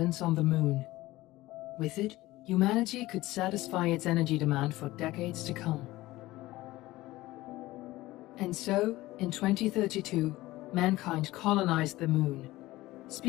on the Moon. With it, humanity could satisfy its energy demand for decades to come. And so, in 2032, mankind colonized the Moon.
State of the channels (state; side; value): quieter; right; 18.0 dB